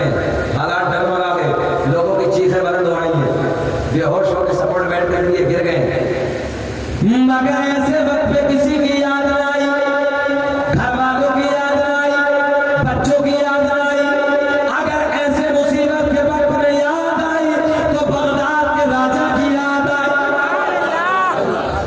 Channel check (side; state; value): both; identical; correlation 1.00